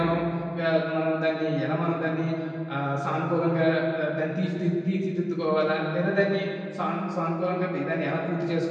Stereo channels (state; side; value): identical; both; correlation 1.00